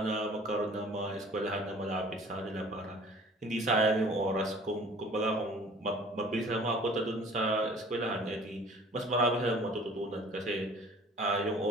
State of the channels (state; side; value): normal; both; correlation 0.49